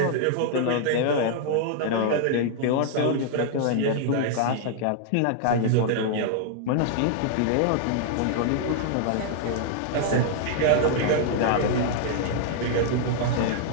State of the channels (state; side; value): different; both; correlation -0.01